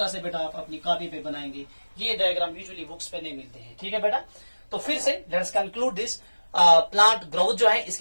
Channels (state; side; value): inverted; both; correlation -1.00